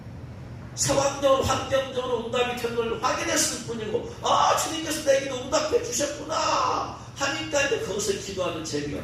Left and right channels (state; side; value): identical; both; correlation 1.00